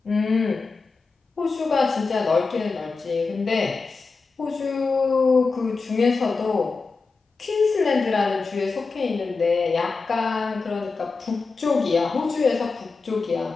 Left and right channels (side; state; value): right; quieter; 4.3 dB